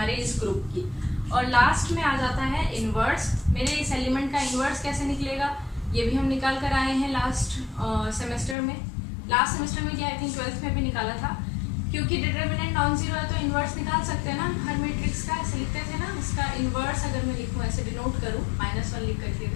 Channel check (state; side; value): drops out; right; at 8.6 s